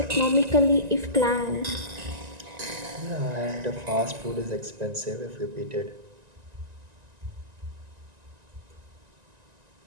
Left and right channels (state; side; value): late; left; 1.9 ms